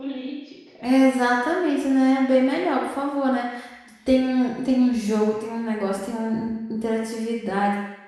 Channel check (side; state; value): both; identical; correlation 1.00